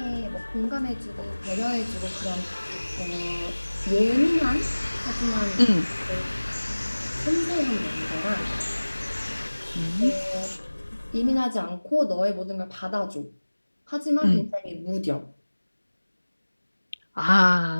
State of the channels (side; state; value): both; inverted; correlation -1.00